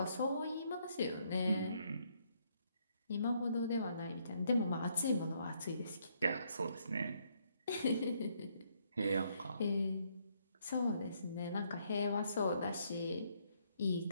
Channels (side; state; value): both; inverted; correlation -0.72